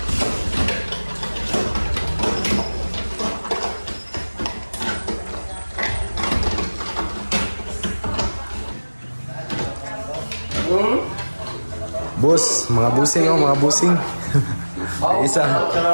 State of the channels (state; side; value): inverted; both; correlation -1.00